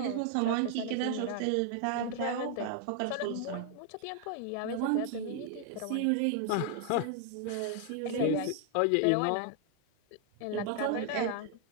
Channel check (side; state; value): both; different; correlation 0.00